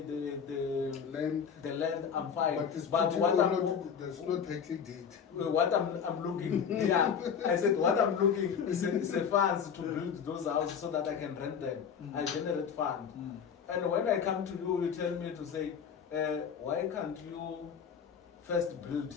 land. The land, I'm fine. But what there's no title deed. What I'm looking, I said what I'm looking is a funds to build those houses so that I can rent them. I generate fund. And when I come to you, you tell me to say, why can't you first build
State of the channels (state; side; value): quieter; right; 7.2 dB